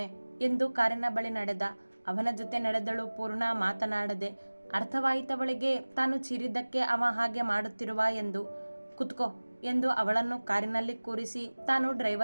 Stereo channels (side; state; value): both; inverted; correlation -1.00